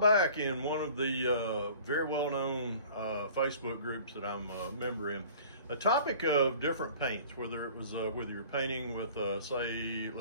in one of the very well-known Facebook groups that I'm a member in, a topic of different paints, whether it was whether you're painting with let's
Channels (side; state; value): both; inverted; correlation -0.47